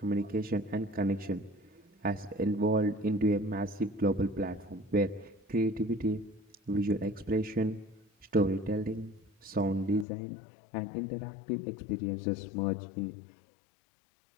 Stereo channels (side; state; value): right; drops out; at 10.1 s